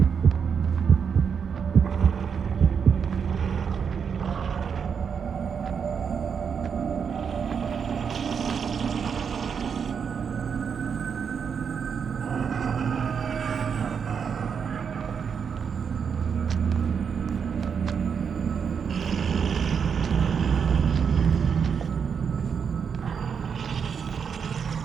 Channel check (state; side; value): quieter; left; 6.7 dB